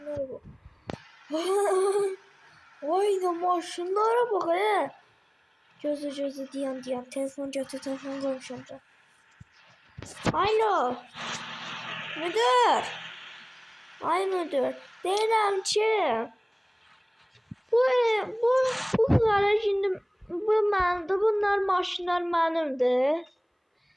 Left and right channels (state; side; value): identical; both; correlation 1.00